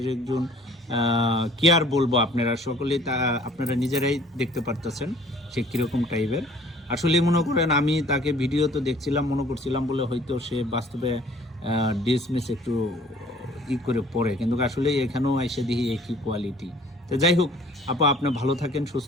একজন কি আর বলবো, আপনারা সকলেই তা আপনারা নিজেরাই দেখতে পারতেছেন সে কিরকম টাইপের। আসলে মনে করেন আমি তাকে ভিডিও তো দেখছিলাম, মনে করছিলাম বলে হয়তো সে বাস্তবে ডিসমিস একটু ই করে পরে, কিন্তু আসলে এখানেও এসে দেখি একই কোয়ালিটি। তো যাই হোক আপা, আপনি ভালো থাকেন,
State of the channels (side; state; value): both; normal; correlation 0.54